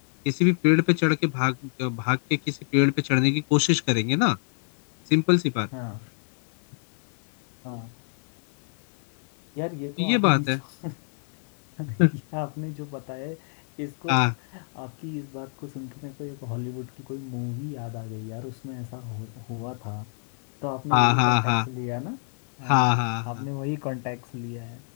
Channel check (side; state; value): right; silent; 56 dB below the other